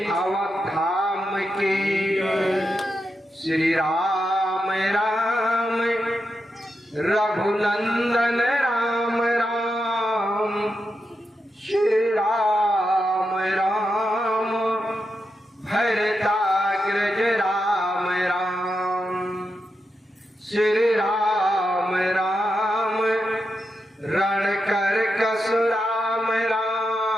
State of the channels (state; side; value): normal; both; correlation 0.87